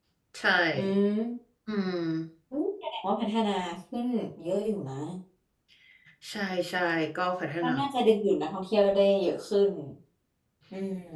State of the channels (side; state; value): both; identical; correlation 1.00